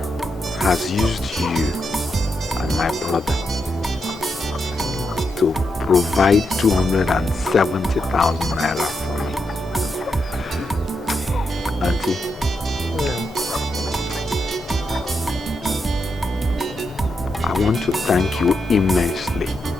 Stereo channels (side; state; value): both; normal; correlation 0.84